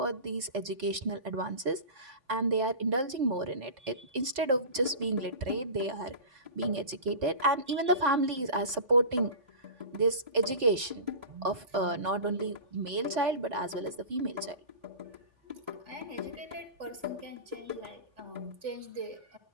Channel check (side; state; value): left; late; 3.9 ms